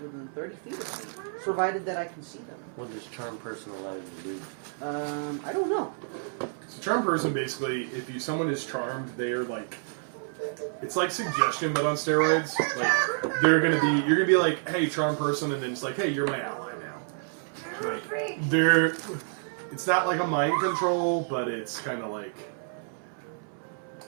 within 30 feet of me, provided that I can see them. What does Charm Person allow you to do? I don't know. So charm person, basically, if someone is charmed, they are like, it's like suggestion, but on steroids. Like you're gonna be like, hey, charm person, and then it's like, hey, you're my ally now. Like they're, it's not like a mind control, but it's kind of like.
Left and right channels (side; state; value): left; silent; 59 dB below the other